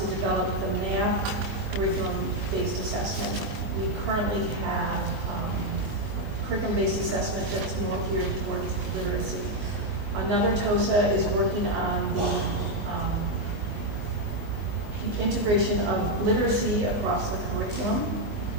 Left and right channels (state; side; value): late; left; 19 ms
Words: develop the math curriculum-based assessment. We currently have curriculum-based assessment that's more geared towards literacy. Another TOSA is working on the integration of literacy across the curriculum.